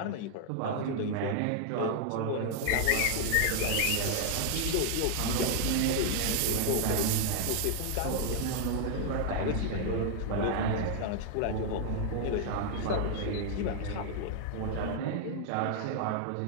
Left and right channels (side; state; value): both; different; correlation 0.00